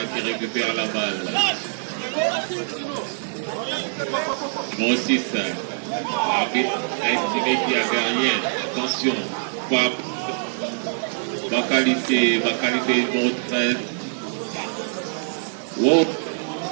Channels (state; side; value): silent; left; digital silence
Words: qui récupère la balle. Numéro 6. L'arbitre a estimé qu'il n'y avait rien. Attention. Bakalisé numéro 13. Wow,